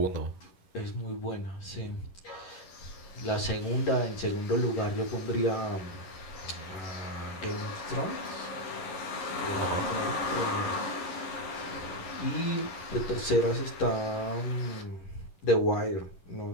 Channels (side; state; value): right; late; 11 ms